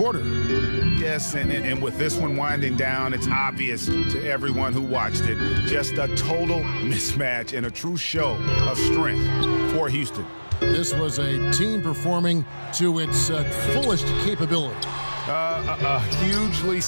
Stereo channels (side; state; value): both; inverted; correlation -1.00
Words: Yes, and with this one winding down, it's obvious to everyone who watched it. Just a total mismatch and a true show of strength for Houston. This was a team performing to its fullest capability. A hugely